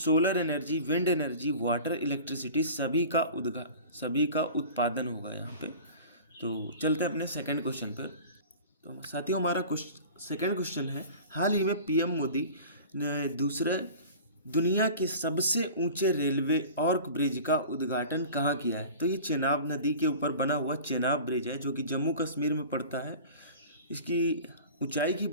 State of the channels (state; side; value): inverted; both; correlation -0.39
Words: energy, wind energy, water, electricity सभी का उत्पादन होगा यहाँ पे। तो चलते हैं अपने सेकंड क्वेश्चन पर। तो साथियों, हमारा सेकंड क्वेश्चन है, हाल ही में पीएम मोदी ने दूसरे दुनिया के सबसे ऊंचे रेलवे आर्क ब्रिज का उद्घाटन कहाँ किया है? तो ये चेनाब नदी के ऊपर बना हुआ चेनाब ब्रिज है, जो कि जम्मू कश्मीर में पड़ता है। इसकी ऊंचाई की